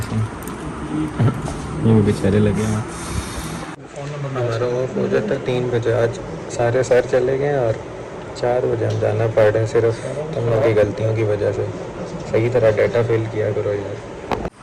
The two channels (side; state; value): both; identical; correlation 1.00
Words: ये भी बेचारे लगे हैं। फ़ोन नंबर हमारा ऑफ हो जाता है 3 बजे। आज सारे सर चले गए और 4 बजे हम जाना पड़ रहे हैं सिर्फ तुम लोग की गलतियों की वजह से। सही तरह डाटा फिल किया करो यार।